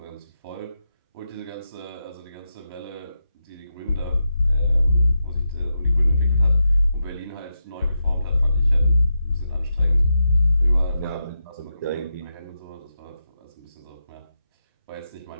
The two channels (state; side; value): inverted; both; correlation -0.86